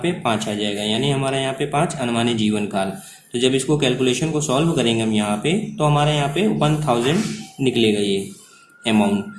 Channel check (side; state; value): both; identical; correlation 1.00